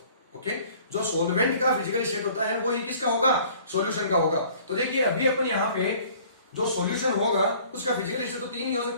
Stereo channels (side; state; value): both; inverted; correlation -0.53